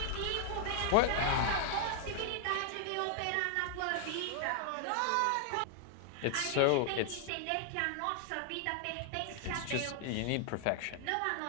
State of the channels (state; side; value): different; both; correlation 0.00